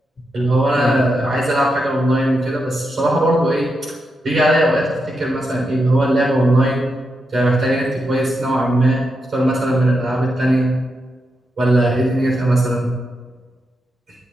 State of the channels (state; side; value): normal; both; correlation 0.85